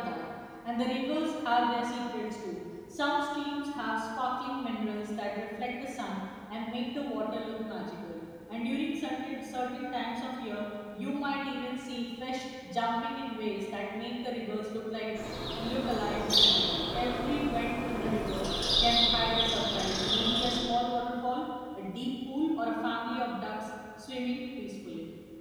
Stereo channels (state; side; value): identical; both; correlation 1.00